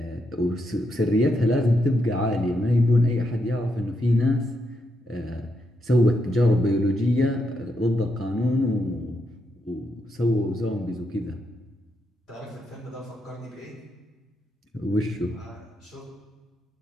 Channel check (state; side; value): normal; both; correlation 0.81